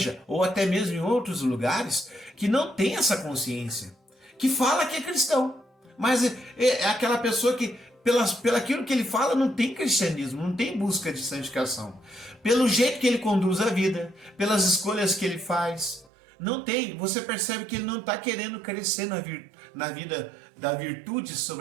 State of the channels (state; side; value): drops out; left; at 16.1 s